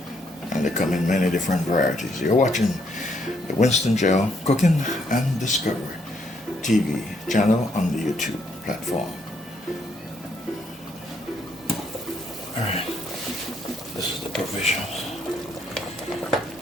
And they come in many different varieties. You're watching the Winston GeL Cooking and Discovery TV channel on the YouTube platform. Alright, provisions.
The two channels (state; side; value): normal; both; correlation 0.72